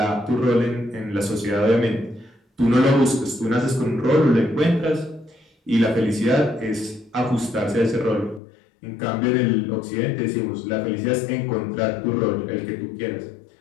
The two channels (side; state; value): right; drops out; at 8.4 s